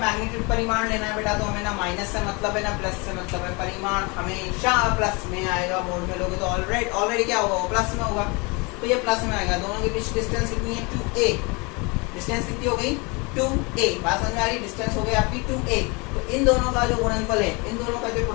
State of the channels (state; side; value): quieter; right; 28.6 dB